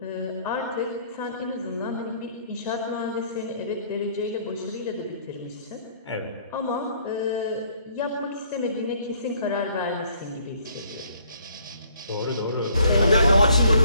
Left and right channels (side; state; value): both; inverted; correlation -0.62